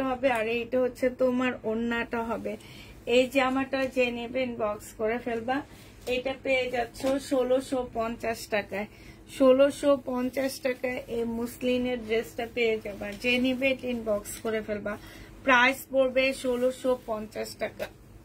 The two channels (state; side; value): identical; both; correlation 1.00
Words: হবে আর এইটা হচ্ছে তোমার ওড়নাটা হবে। এই জামাটা যে নেবেন বক্স করে ফেলবা। এটা পেয়ে যাচ্ছ 1650 টাকায়। 1650 টাকায় এই মুসলিনের ড্রেসটা পেয়ে যাবা। যে নিবে ইনবক্স করে ফেলবা। প্রাইস পড়বে 1650 টাকা।